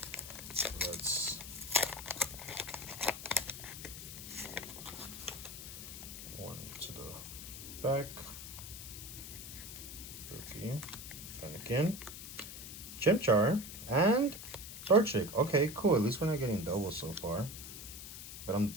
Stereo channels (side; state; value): left; noise; hiss, 10 dB below the sound